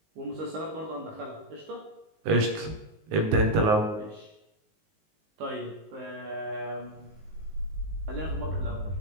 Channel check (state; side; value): late; left; 19 ms